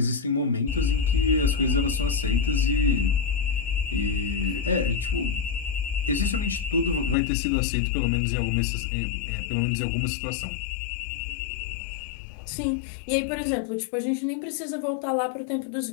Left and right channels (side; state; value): right; drops out; at 7.2 s